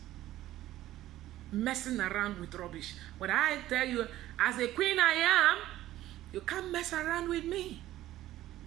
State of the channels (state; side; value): quieter; left; 14.5 dB